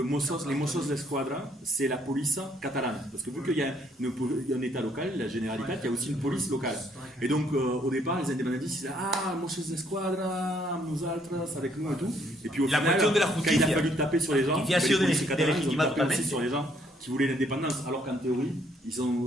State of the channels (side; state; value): both; normal; correlation 0.67